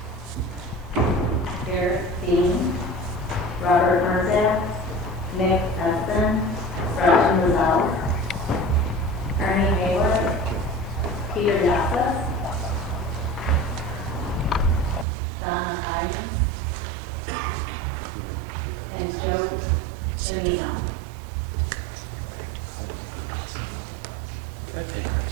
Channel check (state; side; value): drops out; left; at 15.1 s